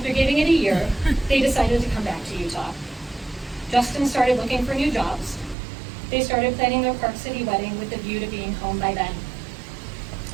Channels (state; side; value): drops out; left; at 5.6 s